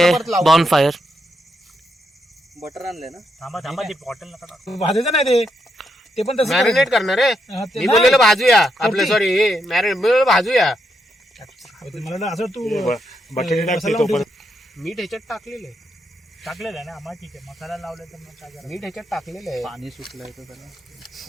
बॉन फायर. बटर आणले ना. थांबा ती बॉटल नका टाकू. भाजायचं नाही ते पण तसं मॅरिनेट करणार आहे. हा, ते मी नाही. बोललेलं भाजूया आपलं, सॉरी मॅरिनेट भाजूया. मला वाटलं असं तू बटाटे टाकते मसाला तोपर्यंत. मीठ ह्याच्यात टाकलेलं आहे. टाकलेलं आहे ना आम्हाला, ठीक आहे. मसाला लावला तर मग काय करायचं? मीठ ह्याच्यात टाकलेलं आहे. पाणी सुटलंय तर त्याला.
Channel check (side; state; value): both; normal; correlation 0.80